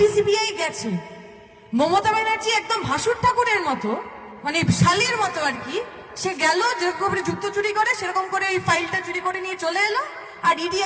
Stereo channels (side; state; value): both; identical; correlation 1.00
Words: সিবিআই গেছে। মমতা ব্যানার্জি একদম ভাসুর ঠাকুরের মতো, মানে শালির মতো আর কি, সে গেল যেরকম করে জুতো চুরি করে সেরকম করে এই ফাইলটা চুরি করে নিয়ে চলে এলো, আর ইডি